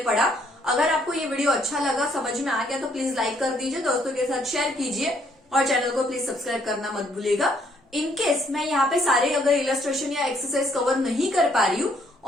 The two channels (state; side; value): normal; both; correlation 0.67